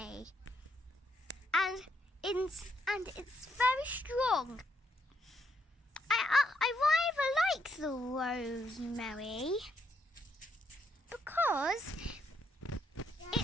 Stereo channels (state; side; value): normal; both; correlation 0.76